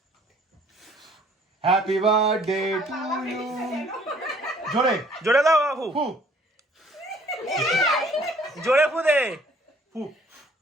হ্যাপি বার্থডে টু ইউ জোরে জোরে দাও বাবু ফু জোরে ফু দে ফু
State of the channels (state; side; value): normal; both; correlation 0.58